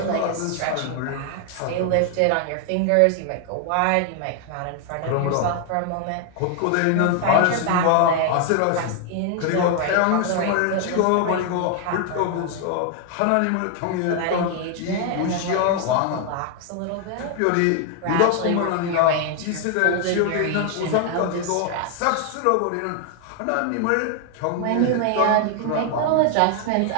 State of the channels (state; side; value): different; both; correlation 0.00